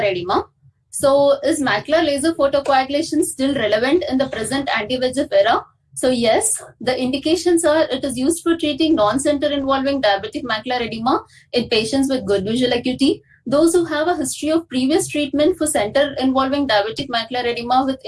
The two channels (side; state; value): both; identical; correlation 1.00